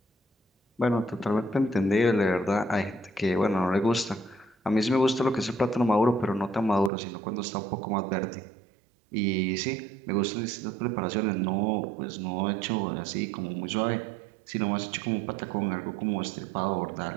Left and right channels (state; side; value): drops out; left; at 6.9 s